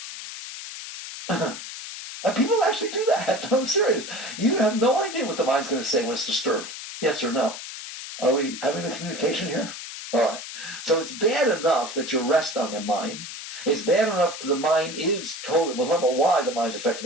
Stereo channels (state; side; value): noise; left; hiss, 10 dB below the sound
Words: And people actually do that. I'm serious. You have no idea what the mind's going to say when it's disturbed. Yes or no? Are we having a communication here? All right. So it's bad enough that you rest on your mind. It's bad enough that the mind is totally, we'll talk about why the mind's affected